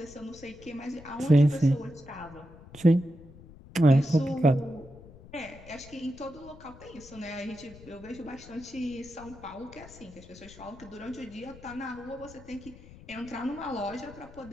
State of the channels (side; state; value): left; noise; rumble, 19 dB below the sound